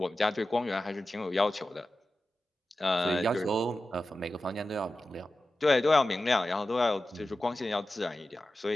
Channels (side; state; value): both; normal; correlation 0.94